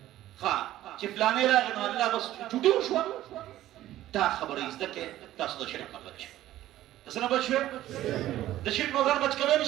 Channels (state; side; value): quieter; left; 14.0 dB